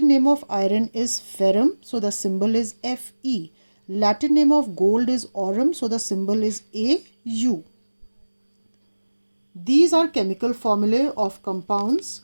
name of iron is ferrum, so the symbol is Fe. Latin name of gold is aurum, so the symbol is Au. These are chemical formulae of compounds.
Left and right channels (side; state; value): both; inverted; correlation -1.00